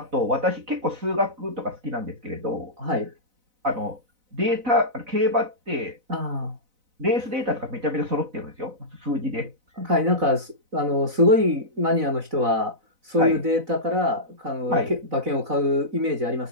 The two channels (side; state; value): left; late; 4.0 ms